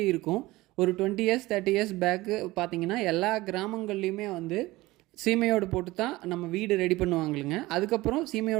இருக்கும். ஒரு 20 இயர்ஸ் 30 இயர்ஸ் பேக்கு பார்த்தீங்கன்னா எல்லா கிராமங்கள்லேயுமே வந்து சீமையோடு போட்டு தான் நம்ம வீடு ரெடி பண்ணுவாங்களுங்க. அதுக்கப்புறம்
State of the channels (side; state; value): left; quieter; 19.3 dB